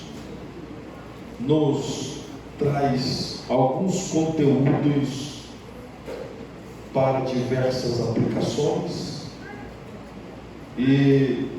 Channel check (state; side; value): identical; both; correlation 1.00